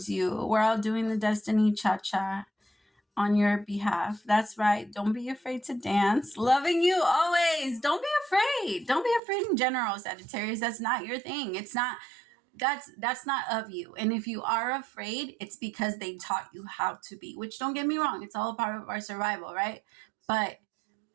you. We're all doing the destiny cha-cha on your behalf. That's right. Don't be afraid to dance. Loving you always. Don't be afraid. Don't be afraid in general, Sagittarius. That's not your thing. It's not, that's not of you. And if you are afraid, it's because they taught you how to be, which don't get me wrong. It's all a part of our survival, right? But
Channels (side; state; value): left; drops out; at 9.2 s